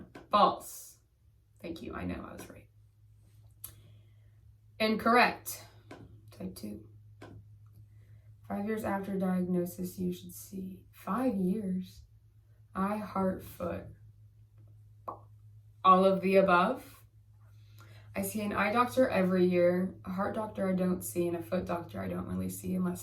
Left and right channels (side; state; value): both; identical; correlation 1.00